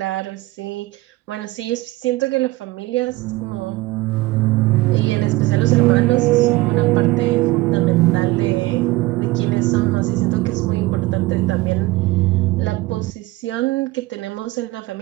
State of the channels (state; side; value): quieter; left; 20.0 dB